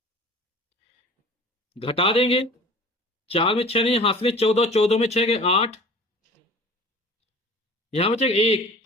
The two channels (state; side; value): normal; both; correlation 0.43